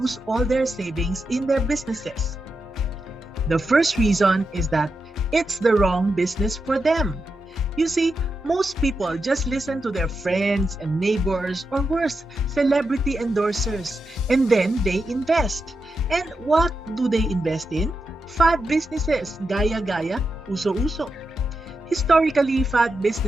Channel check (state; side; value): normal; both; correlation 0.87